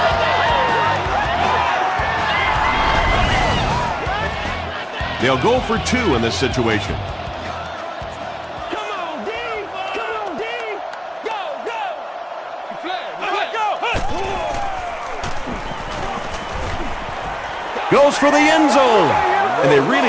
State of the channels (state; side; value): identical; both; correlation 1.00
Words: They'll go for 2 in this situation. Come on, D! Come on, D! Go, go! Goes for the end zone. And they